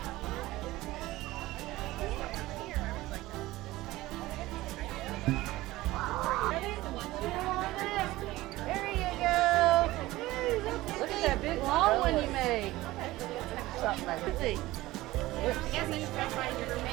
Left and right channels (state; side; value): quieter; left; 17.9 dB